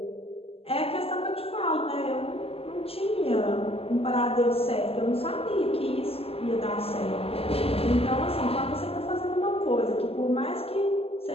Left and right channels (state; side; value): late; right; 0.28 ms